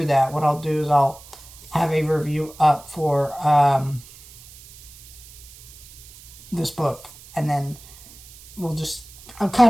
that, what I'll do is I'll have a review up for this book. And then I'm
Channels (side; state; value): right; noise; hiss, 20 dB below the sound